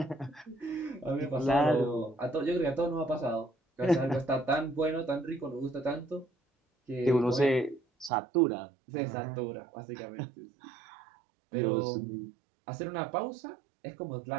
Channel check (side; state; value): left; drops out; at 8.1 s